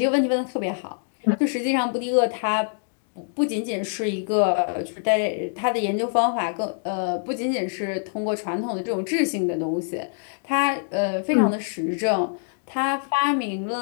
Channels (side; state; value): right; silent; digital silence